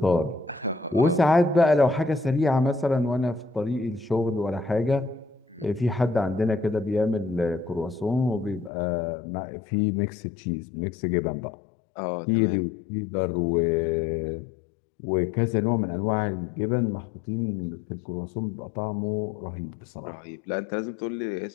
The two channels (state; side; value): drops out; right; at 8.7 s